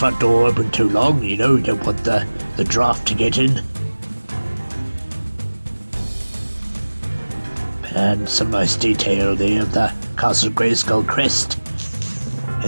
door open too long, you know, you don't want the draft to get in. And some nice detail there of the Castle Grayskull crest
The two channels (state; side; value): inverted; both; correlation -1.00